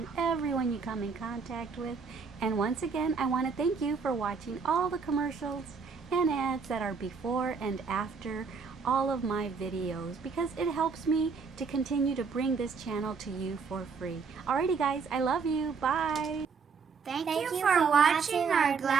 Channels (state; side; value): quieter; left; 5.3 dB